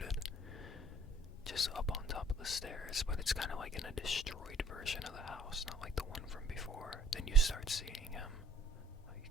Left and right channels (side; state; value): both; normal; correlation 0.57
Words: Just up on top of the stairs, but it's kind of like in a destroyed version of the house, not like the one from before. Then you start seeing him. Oh, you